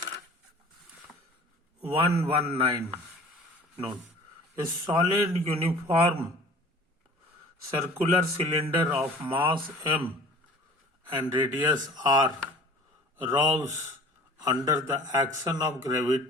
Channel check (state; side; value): normal; both; correlation 0.46